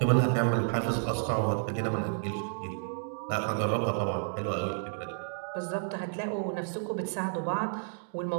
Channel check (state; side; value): silent; left; digital silence